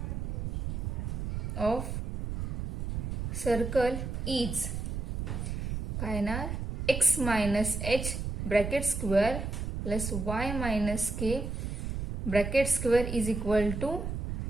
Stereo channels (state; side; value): noise; right; rumble, 3 dB below the sound